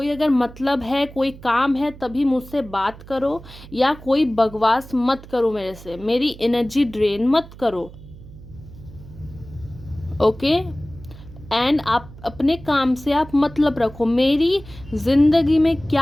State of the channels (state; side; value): noise; right; hum, 18 dB below the sound